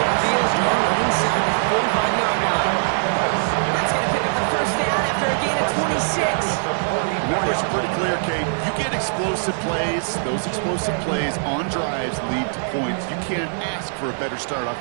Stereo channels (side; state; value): left; silent; 57 dB below the other